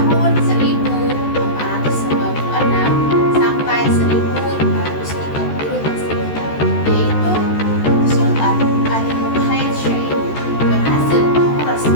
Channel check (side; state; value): right; late; 14 ms